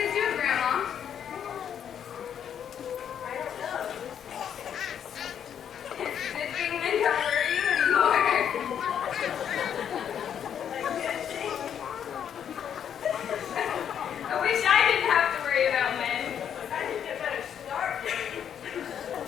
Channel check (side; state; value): right; quieter; 8.8 dB